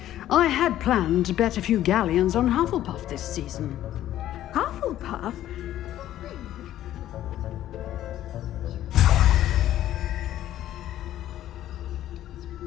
I had planned to bet a few galleons on Hufflepuff this season. Hufflepuff?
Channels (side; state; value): right; quieter; 12.8 dB